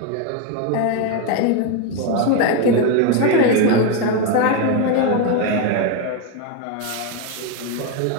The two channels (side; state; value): both; different; correlation 0.02